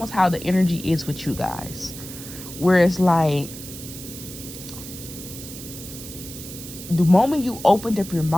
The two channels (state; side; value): noise; right; hiss, 12 dB below the sound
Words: how the energy is with you guys. Where it's the moment you opened up your